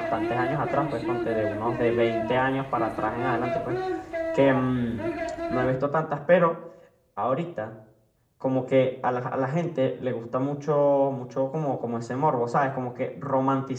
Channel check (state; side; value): identical; both; correlation 1.00